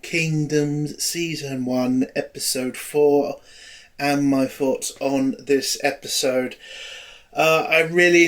Kingdoms, Season 1, Episode 4, and my thoughts on this episode. I really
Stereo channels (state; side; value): identical; both; correlation 1.00